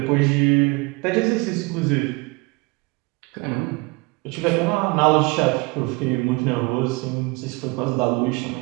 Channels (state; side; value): quieter; left; 26.6 dB